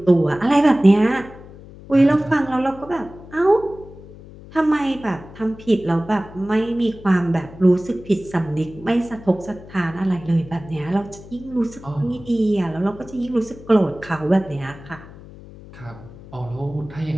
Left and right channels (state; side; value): noise; left; hum, 18 dB below the sound